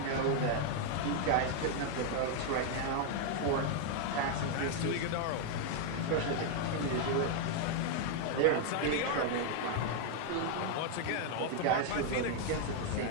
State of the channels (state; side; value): different; both; correlation 0.00